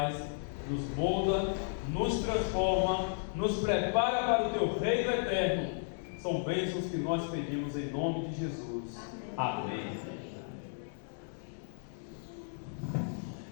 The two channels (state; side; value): silent; right; digital silence